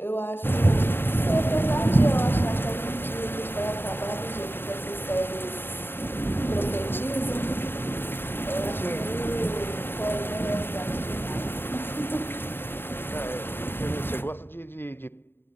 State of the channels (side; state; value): right; late; 0.10 ms